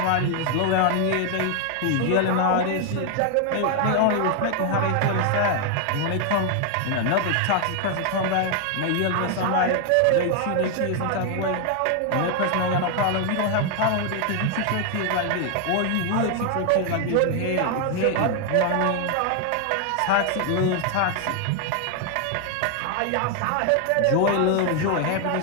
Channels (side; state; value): both; different; correlation 0.00